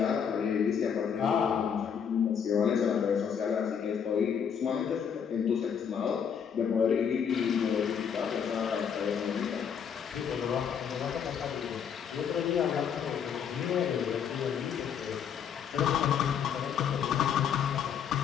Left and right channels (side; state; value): right; quieter; 7.6 dB